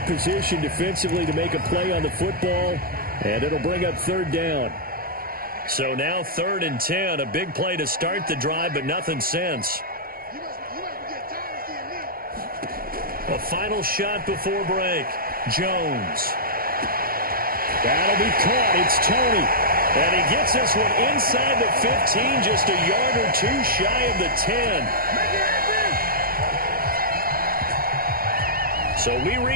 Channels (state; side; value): late; left; 0.42 ms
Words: position defensively to make a play on the football, and it'll bring up third down. So now 3rd and 10, a big play to start the drive, but nothing since. A final shot before break. Jones. That'll be caught. It's Toney. And he gets this one inside the 15, just a yard or two shy of the 10. So we